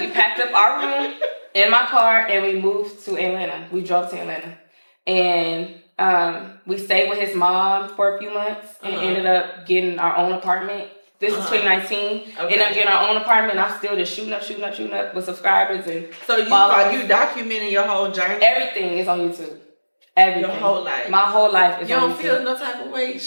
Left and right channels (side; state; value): both; inverted; correlation -1.00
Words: packed up our room in my car and we moved to Atlanta. We drove to Atlanta. And we stayed with his mom for a few months and ended up getting our own apartment. This is 2019. Okay. Ended up getting our own apartment. I'm still just shooting up with subscribers. And so you documenting your whole journey? Everything is on YouTube. Everything. Your whole life? My whole life is on YouTube. You don't feel no type of way